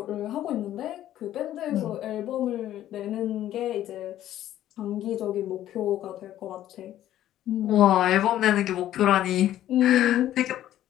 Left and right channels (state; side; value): quieter; right; 12.6 dB